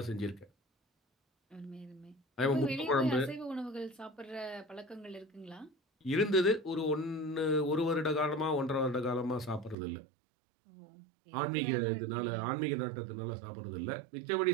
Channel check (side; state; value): left; drops out; at 9.8 s